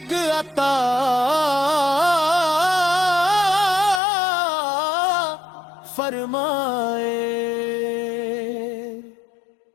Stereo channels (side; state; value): right; drops out; at 4.0 s